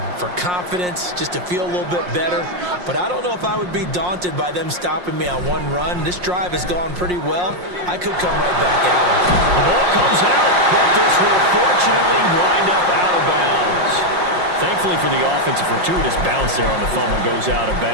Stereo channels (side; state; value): left; late; 5.6 ms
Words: for confidence, just to feel a little bit better. But I don't know if I would be daunted by them stopping me on one run. This drive has gone pretty well. I could come right back at them. The ball comes out, but this will fortunately wind up out of bounds. Thankfully for the offense, a fortuitous bounce there on the fumble goes out of